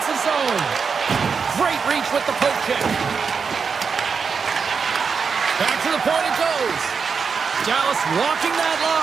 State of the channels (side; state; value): left; quieter; 5.7 dB